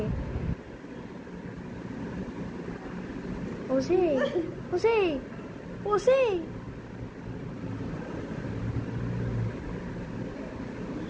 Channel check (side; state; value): both; identical; correlation 1.00